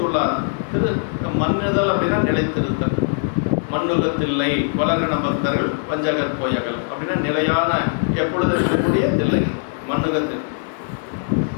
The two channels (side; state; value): right; silent; 62 dB below the other